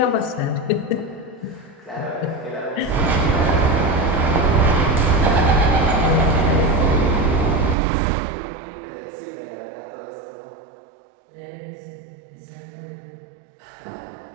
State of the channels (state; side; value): drops out; left; at 7.8 s